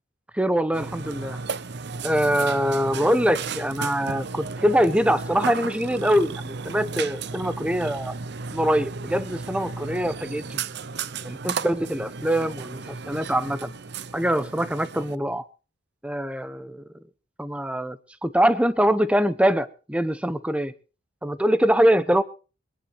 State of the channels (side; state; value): both; normal; correlation 0.87